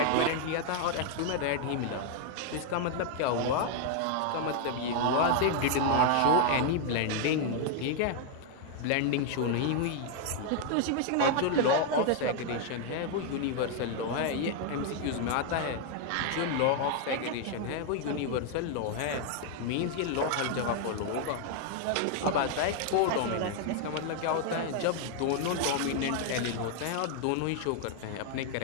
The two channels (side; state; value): both; different; correlation 0.00